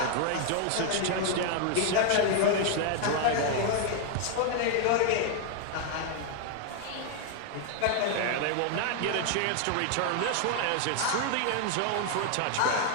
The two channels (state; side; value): different; both; correlation 0.00